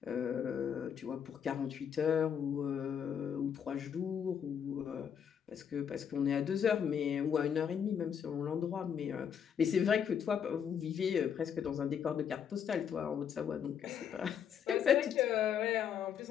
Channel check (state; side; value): quieter; right; 8.1 dB